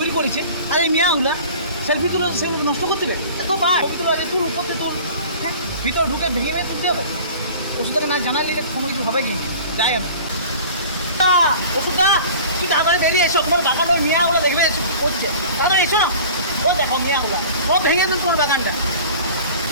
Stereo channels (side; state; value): both; inverted; correlation -0.42